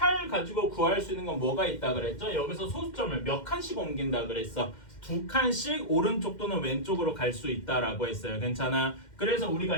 가지고 구할 수 있는 건 뭐가 있다 그랬죠? 여기서 소수점을 몇 칸씩 옮긴다 그랬어. 2칸씩 오른쪽 또는 왼쪽으로 갈 수 있다라고 했어요. 괜찮아? 그래서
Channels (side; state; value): right; late; 2.1 ms